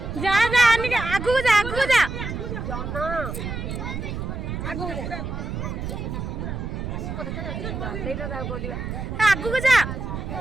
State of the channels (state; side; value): noise; right; rumble, 5 dB below the sound